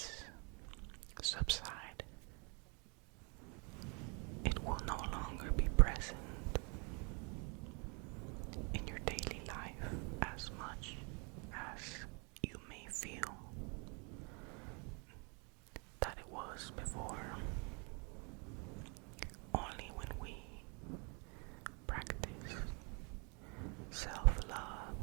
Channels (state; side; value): quieter; left; 34.2 dB